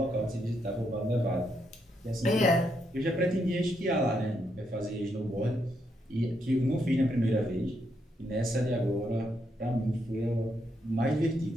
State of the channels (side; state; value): both; normal; correlation 0.78